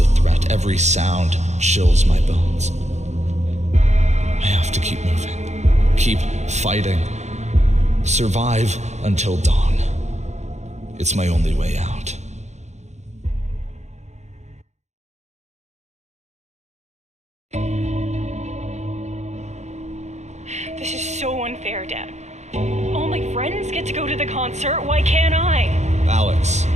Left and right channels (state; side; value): late; left; 0.33 ms